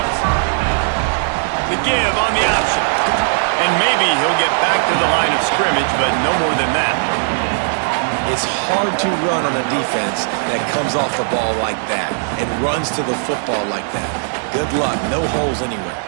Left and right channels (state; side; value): silent; left; digital silence